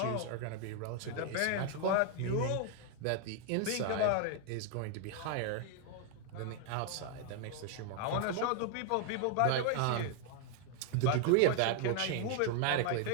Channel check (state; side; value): different; both; correlation 0.00